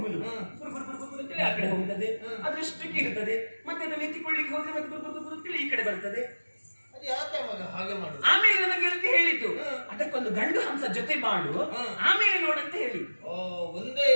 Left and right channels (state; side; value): inverted; both; correlation -1.00